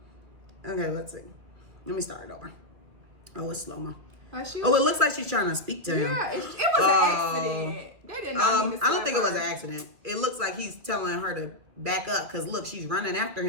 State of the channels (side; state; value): left; late; 2.4 ms